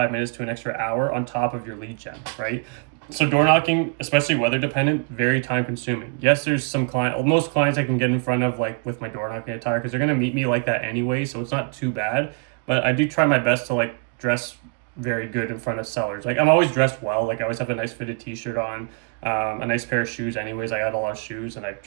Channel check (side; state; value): left; quieter; 37.6 dB